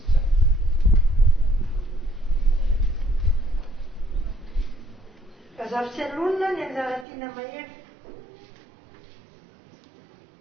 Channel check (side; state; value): left; drops out; at 7.1 s